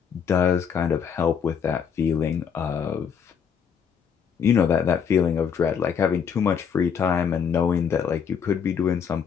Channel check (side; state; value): right; quieter; 7.2 dB